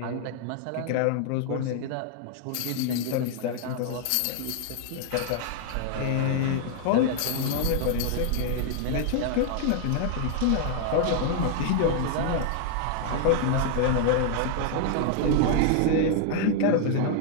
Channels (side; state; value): both; different; correlation 0.00